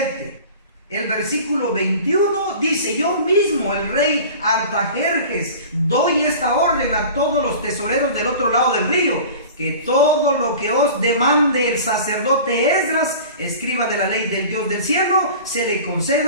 el versículo 21 dice: yo mismo, el rey Artajerjes, doy esta orden a todos los tesoreros del otro lado del río, que todo lo que os demande el sacerdote Esdras, escriba de la ley del Dios del cielo, se le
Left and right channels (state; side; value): inverted; both; correlation -0.39